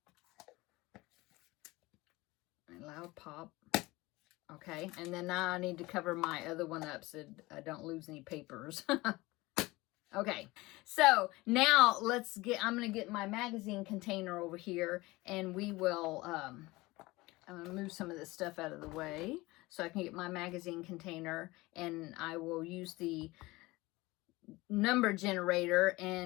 A loud pop. Okay, and then now I need to cover my other one up so I don't lose any papers. Okay, so now I'm going to get my magazine container over here, and we will, I'm going to move some of this stuff out of the way so I can get my magazine container, and I will use the number generator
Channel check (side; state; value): right; quieter; 21.1 dB